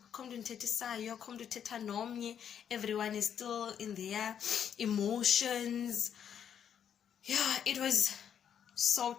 everyone is still in their emotions. Yeah, it was so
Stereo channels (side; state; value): right; quieter; 8.6 dB